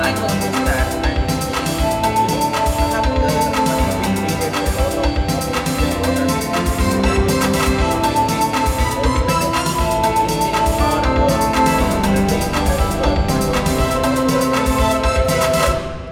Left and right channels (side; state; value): both; identical; correlation 1.00